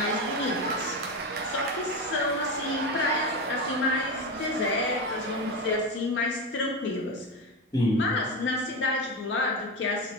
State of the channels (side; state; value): both; normal; correlation 0.17